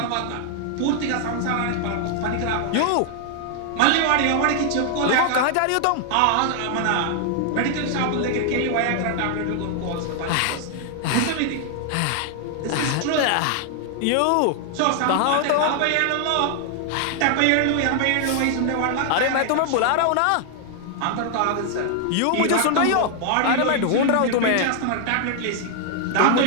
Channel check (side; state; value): both; different; correlation 0.00